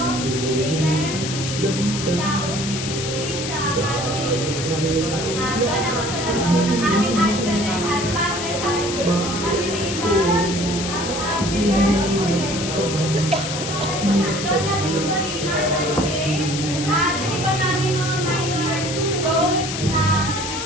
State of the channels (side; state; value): left; noise; hiss, 5 dB below the sound